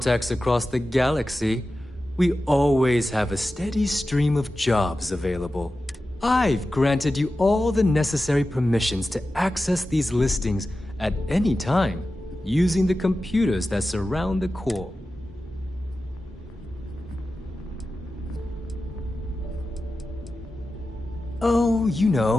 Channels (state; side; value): normal; both; correlation 0.93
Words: across the galaxy, we always have a steady stream of jobs available. I've granted you all the necessary permissions to access these listings at any time, using the computers that surround the core. Oh, you